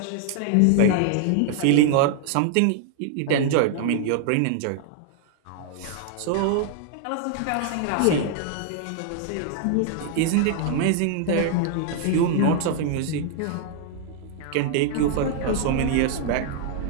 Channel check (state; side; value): different; both; correlation 0.00